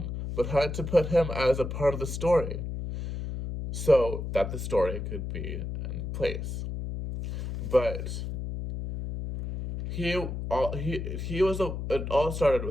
but had to put him as a part of the story so that the story could be in place. But it all started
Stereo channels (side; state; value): left; noise; hum, 5 dB below the sound